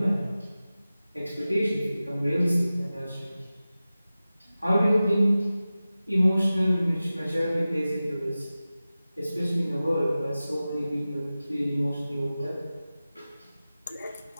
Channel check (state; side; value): inverted; both; correlation -0.96